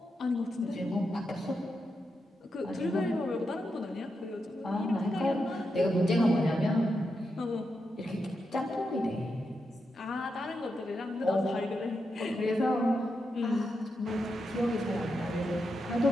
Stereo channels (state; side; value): normal; both; correlation 0.86